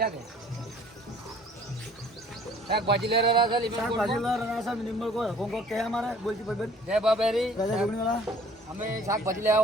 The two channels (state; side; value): normal; both; correlation 0.53